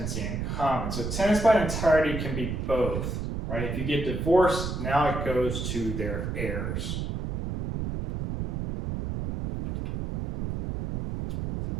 in common. So tenants by entirety can be both, right? If you get divorced, now it goes to their heirs.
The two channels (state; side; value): noise; right; rumble, 4 dB below the sound